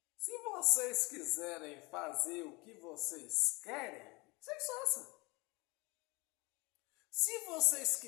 Se vocês quiserem fazer o que vocês querem, vocês façam. Se vocês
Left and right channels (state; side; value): quieter; right; 25.7 dB